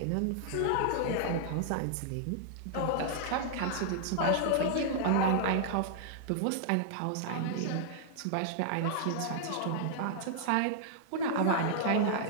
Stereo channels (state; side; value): different; both; correlation -0.01